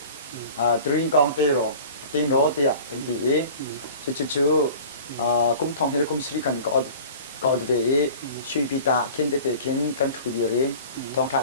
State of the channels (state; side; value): inverted; both; correlation -0.42